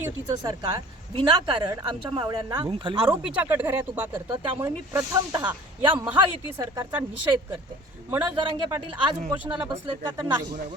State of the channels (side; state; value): both; normal; correlation 0.47